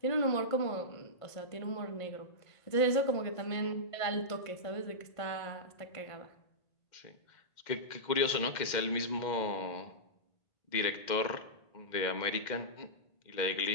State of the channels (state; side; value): late; right; 2.1 ms